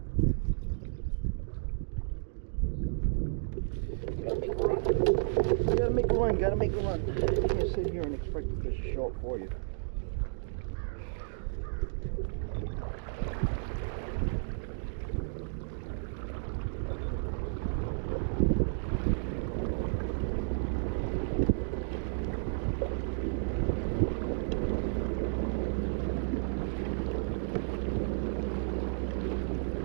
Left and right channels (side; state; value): left; silent; digital silence